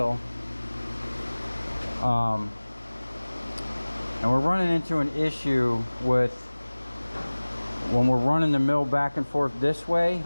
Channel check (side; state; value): both; inverted; correlation -1.00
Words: And we're running into an issue with when we're running the mill back and forth this way,